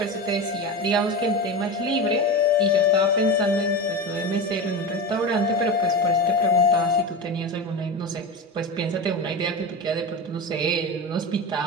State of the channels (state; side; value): normal; both; correlation 0.23